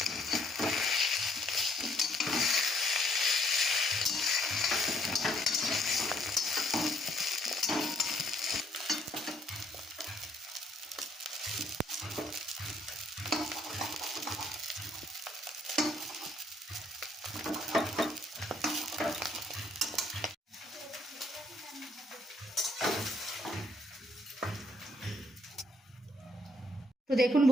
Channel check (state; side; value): normal; both; correlation 0.67